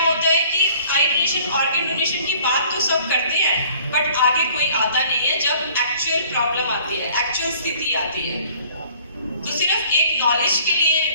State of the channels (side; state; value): both; inverted; correlation -0.54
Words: होता है कि आई डोनेशन, ऑर्गन डोनेशन की बात तो सब करते हैं, बट आगे कोई आता नहीं है जब एक्चुअल प्रॉब्लम आती है, एक्चुअल स्थिति आती है। तो सिर्फ एक नॉलेज के